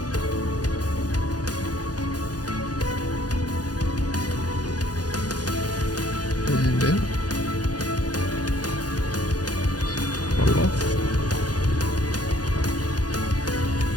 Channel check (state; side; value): late; right; 0.69 ms